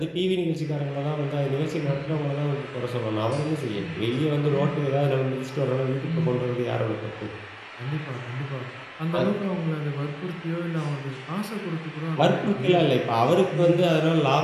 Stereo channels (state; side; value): identical; both; correlation 1.00